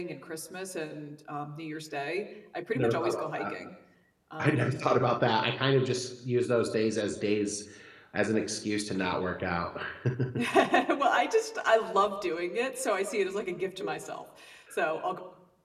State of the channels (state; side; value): identical; both; correlation 1.00